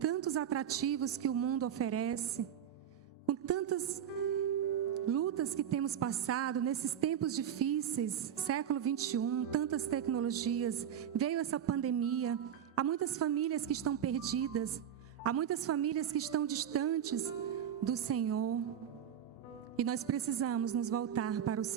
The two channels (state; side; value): quieter; left; 9.4 dB